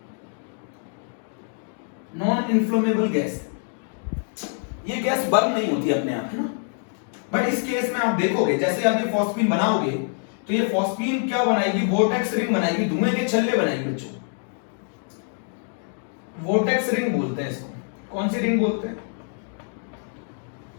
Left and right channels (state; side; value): silent; right; 57 dB below the other